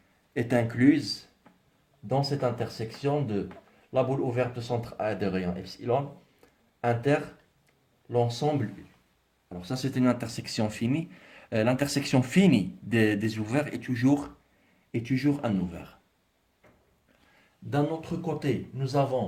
est incluse dans cette intersection de la boule ouverte de centre A de rayon epsilon inter l'ensemble U. Alors ça, c'est une intersection finie. L'intersection finie des ouverts est toujours un ouvert. D'un autre côté, nous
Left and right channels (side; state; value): both; identical; correlation 1.00